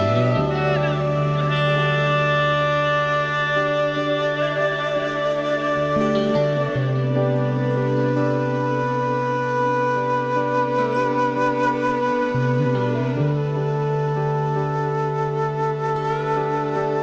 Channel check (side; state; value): both; identical; correlation 1.00